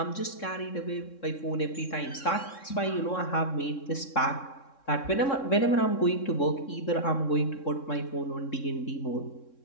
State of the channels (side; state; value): right; late; 3.6 ms